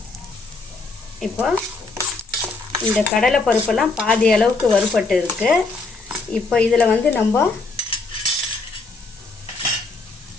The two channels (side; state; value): right; quieter; 3.8 dB